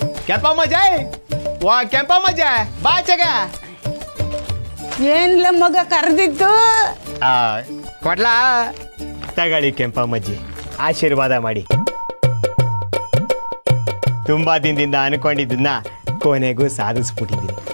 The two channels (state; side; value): inverted; both; correlation -1.00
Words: ಕೆಂಪಮ್ಮಜ್ಜೆ ವಾ ಕೆಂಪಮ್ಮಜ್ಜೆ ಬಾ ಆಚೆಗೆ. ಏನ್ಲ ಮಗ ಕರೆದಿದ್ದು? ಕೊಡ್ಲಾ ತಗೊಳ್ಳಿ ಕೆಂಪಮ್ಮಜ್ಜಿ, ಆಶೀರ್ವಾದ ಮಾಡಿ. ತುಂಬಾ ದಿನದಿಂದ ಅನ್ಕೊಂಡಿದ್ದನ್ನ ಕೊನೆಗೂ ಸಾಧಿಸ್ಬಿಟ್ಟಿದ್ದೀನಿ.